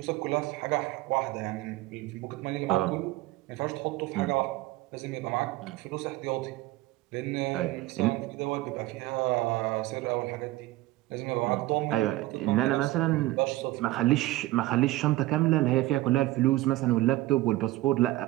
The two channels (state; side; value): quieter; left; 17.6 dB